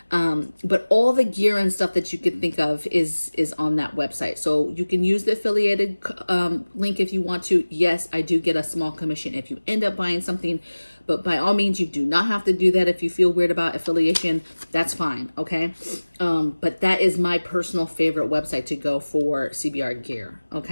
But all the gear and stuff that you could think of is on that website. So you can use the affiliated link if you want to. Yes, I do get a small commission if you end up buying something, but by all means, you do not have to do that. If you feel weird about affiliation, that's fine. Okay. But that is my personal favorite website to go for CBR gear.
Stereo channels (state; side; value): inverted; both; correlation -1.00